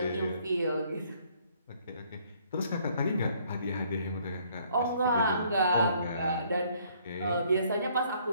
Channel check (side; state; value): both; inverted; correlation -0.64